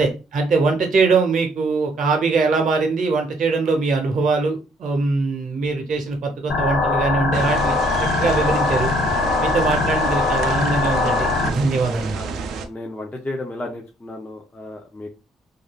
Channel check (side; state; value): both; normal; correlation 0.63